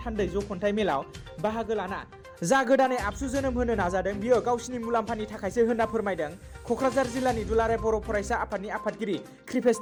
थान्दै जख'न्थाइ मेलाव बाहागो लाना जा गोदानै आबसु जोनोम होनो नाजादों बियो गावसिनि मुलाम्फानि थाखायसो होनना फोरमायदों क'क्राझार जिल्लानि दुलाराय बर' फरायसा आफादनि आफादगिरि कृपेश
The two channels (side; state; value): both; identical; correlation 1.00